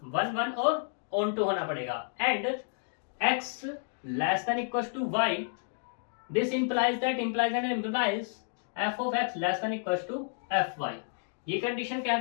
वन वन और ऑन टू होना पड़ेगा and x less than equal to y. This implies that implies and implies f of x less than equal to f y. ये कंडीशन कह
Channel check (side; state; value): right; silent; digital silence